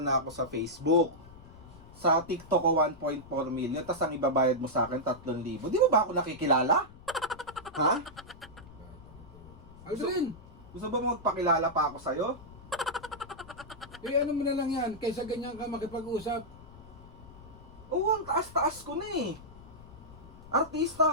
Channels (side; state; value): left; noise; rumble, 19 dB below the sound